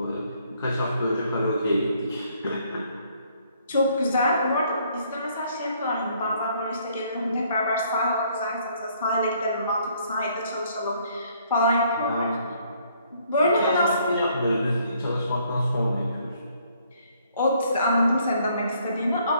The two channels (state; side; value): inverted; both; correlation -0.65